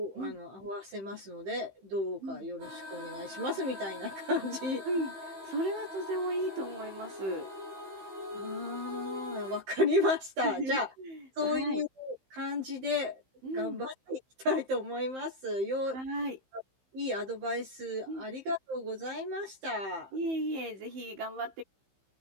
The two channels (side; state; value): left; late; 15 ms